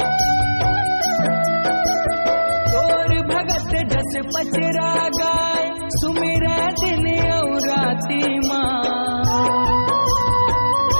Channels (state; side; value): inverted; both; correlation -1.00